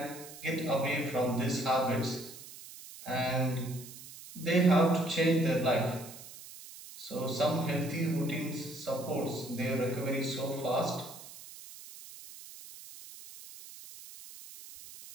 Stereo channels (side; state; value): right; noise; hiss, 15 dB below the sound